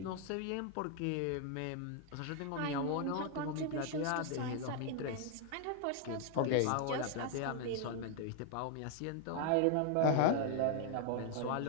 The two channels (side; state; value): both; different; correlation 0.00